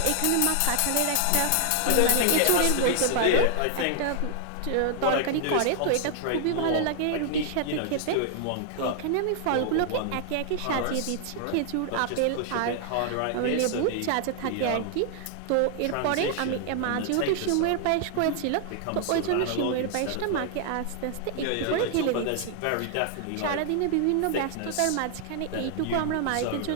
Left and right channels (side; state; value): both; different; correlation 0.00